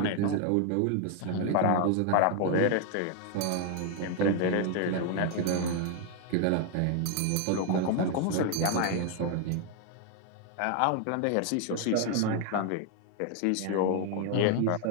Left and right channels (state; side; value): different; both; correlation 0.01